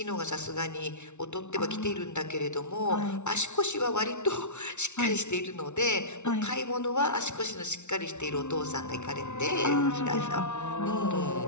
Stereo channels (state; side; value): late; right; 0.83 ms